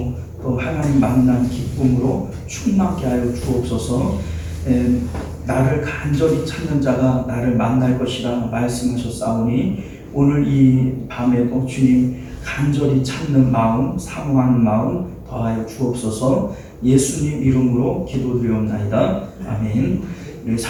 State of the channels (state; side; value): identical; both; correlation 1.00